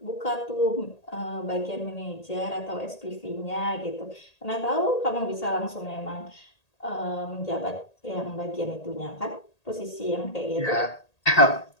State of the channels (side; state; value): right; late; 1.8 ms